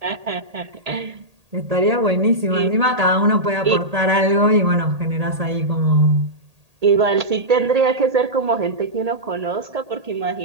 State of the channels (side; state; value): left; late; 1.8 ms